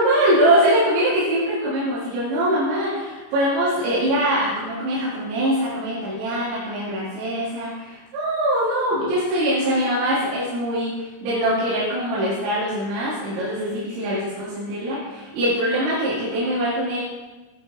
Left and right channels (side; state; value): left; late; 25 ms